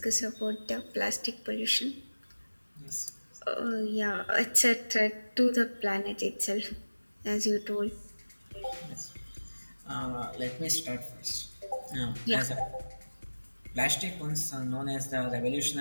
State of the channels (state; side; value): inverted; both; correlation -1.00